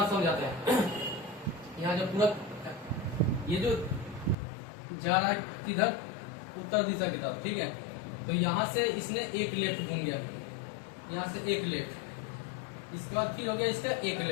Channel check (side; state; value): right; drops out; at 4.4 s